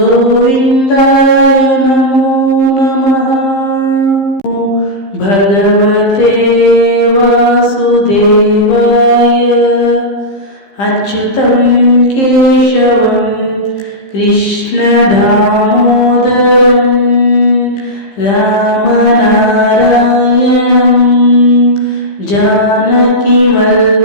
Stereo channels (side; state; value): right; late; 15 ms